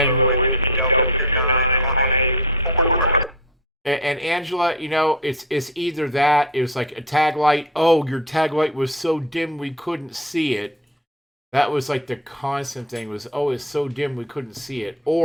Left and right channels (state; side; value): normal; both; correlation 0.29